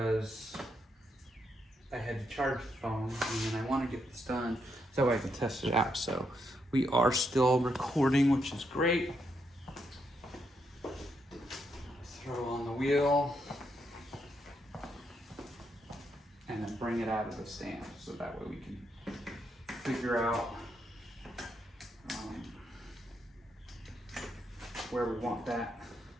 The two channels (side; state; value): both; normal; correlation 0.79